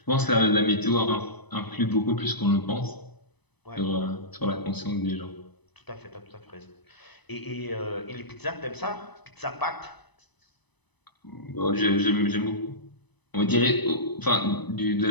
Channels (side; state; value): right; late; 0.99 ms